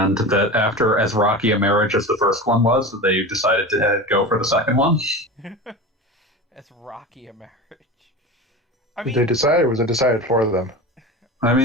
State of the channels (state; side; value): normal; both; correlation 0.29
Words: that after as rocky a marriage as the first one was, they decided to go for the second one. As rocky a marriage. Did they decide, or was it decided for them? I